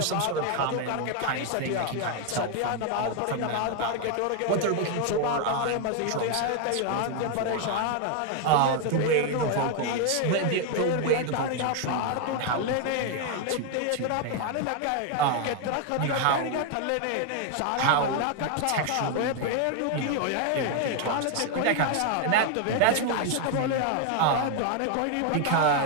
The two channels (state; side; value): different; both; correlation 0.01